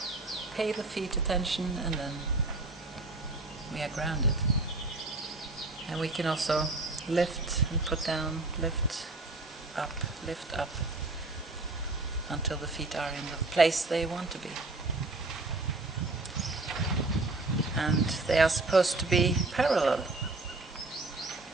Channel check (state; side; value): quieter; left; 3.2 dB